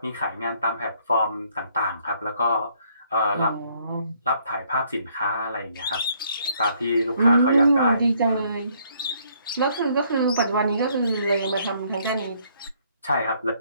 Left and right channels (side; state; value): both; inverted; correlation -0.66